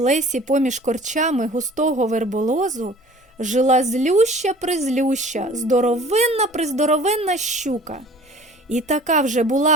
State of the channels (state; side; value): normal; both; correlation 0.47